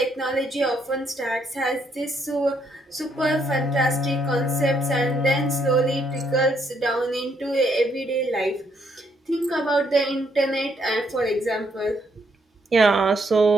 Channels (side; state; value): both; normal; correlation 0.73